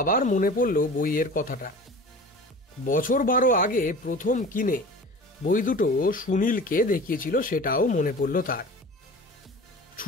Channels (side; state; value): both; normal; correlation 0.38